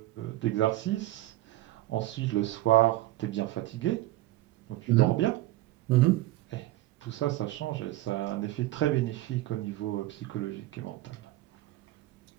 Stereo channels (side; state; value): left; quieter; 16.2 dB